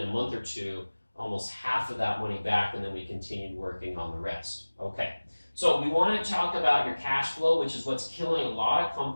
a month or 2, almost half of that money back, and then we continued working on the rest. Okay, so we want to talk about your cash flow, which is what's killing a lot of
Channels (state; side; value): inverted; both; correlation -1.00